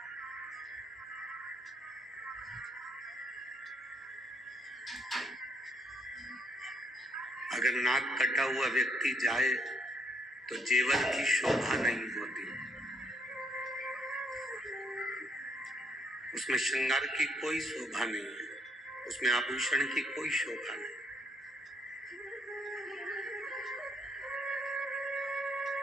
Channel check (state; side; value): normal; both; correlation 0.70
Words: अगर नाक कटा हुआ व्यक्ति जाए तो जेवर की शोभा नहीं होती, उसमें श्रृंगार की कोई शोभा नहीं है, उसमें आभूषण की कोई शोभा नहीं।